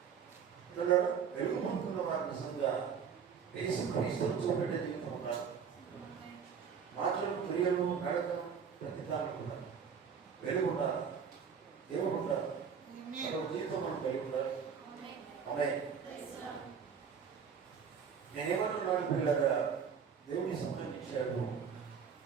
వెలుగు పొందుతున్న వారి నిజంగా యేసుక్రీస్తును చూపెట్టే జీవితం ఉండాలి. మాటలు, క్రియలు, నడకలు, ప్రతిదానం ఉండాలి. వెలుగు ఉండాలి, దేవుడు ఉండాలి, జీవితం మనం కలిగి ఉండాలి. ఆమేన్. నేనేమన్నాను పిల్లగా, దేవుని సమయం ఇచ్చాడు.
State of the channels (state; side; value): quieter; left; 6.8 dB